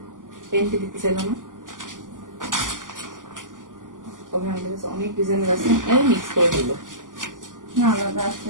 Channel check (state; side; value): late; left; 0.88 ms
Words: পেন্টি দিতে চাইল না, তবে আমাদের কাছে অনেক ডিজাইনের আছে, আমি মিক্স করে দিল না আলাদা আছে।